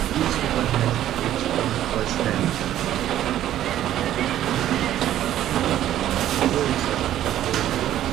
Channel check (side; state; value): left; quieter; 12.3 dB